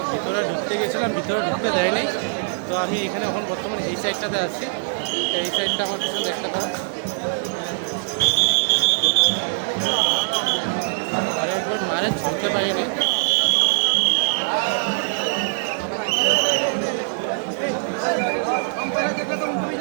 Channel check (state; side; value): silent; left; 62 dB below the other